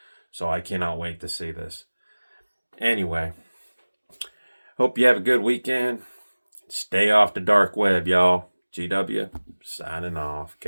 So I cannot wait to see this. Anyway, hope you have a good weekend. Stay off the dark web, y'all. GW, signing off.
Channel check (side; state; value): both; inverted; correlation -1.00